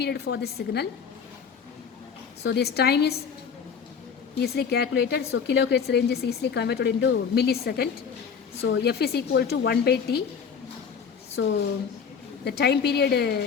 for this signal. So this time is easily calculated. So kilohertz range is easily converted into millisecond. So F is equal to 1 by T. So the time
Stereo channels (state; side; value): quieter; right; 6.6 dB